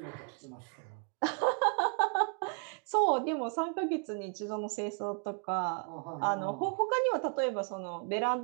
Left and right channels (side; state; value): left; quieter; 39.0 dB